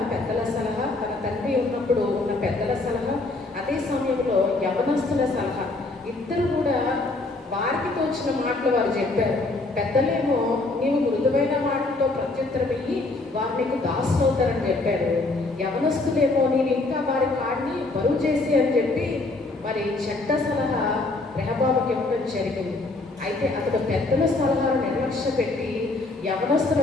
పెద్దల సలహా, తన తండ్రి ఉన్నప్పుడు ఉన్న పెద్దల సలహా, అదే సమయంలో యవనస్తుల సలహా. ఇద్దరు కూడా వారికి తోచిన మాటలు వారు చెప్పారు. పెద్దలేమో నీవు మృదువైన మాటలతో ప్రత్యుత్తరం ఇయ్యి వారు నీకు దాసులు అవుతారని చెప్పారు. యవనస్తులేమో నేను ఇంకా వారి కాడిని బరువు చేసి అని చెప్పి మరి చెడ్డ సలహా రెహబాముకి ఇవ్వడం జరిగింది. అయితే అతడు పెద్దల సలహాను నిర్లక్ష్య పెట్టి యవనస్తుల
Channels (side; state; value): right; quieter; 3.2 dB